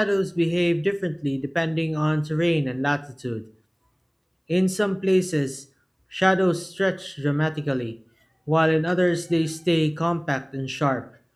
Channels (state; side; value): identical; both; correlation 1.00